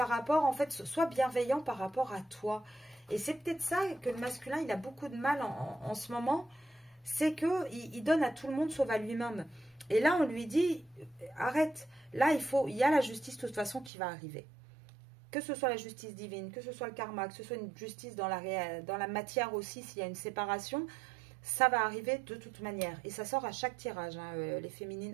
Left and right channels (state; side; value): drops out; left; at 13.9 s